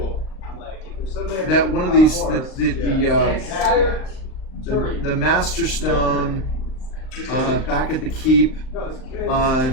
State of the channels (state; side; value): late; right; 38 ms